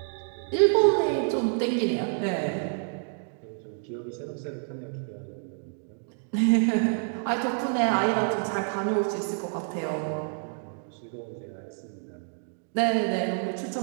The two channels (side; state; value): left; silent; 59 dB below the other